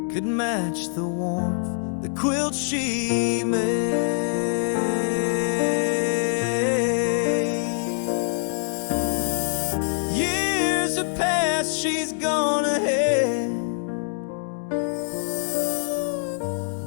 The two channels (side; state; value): right; silent; digital silence